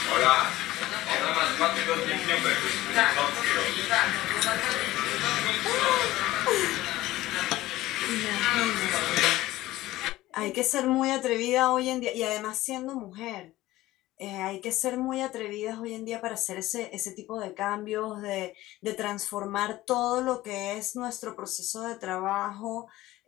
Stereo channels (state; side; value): quieter; right; 16.7 dB